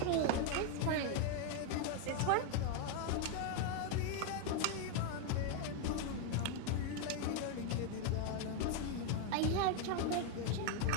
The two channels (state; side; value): different; both; correlation 0.01